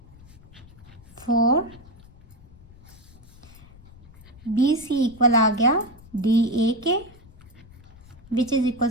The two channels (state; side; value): noise; left; rumble, 22 dB below the sound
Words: 4 B C equal आ गया डी ए के which is